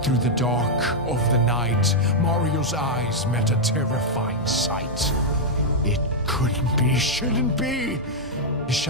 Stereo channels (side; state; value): both; normal; correlation -0.03